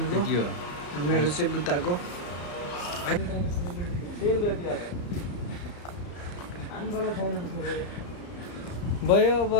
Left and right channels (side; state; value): right; late; 34 ms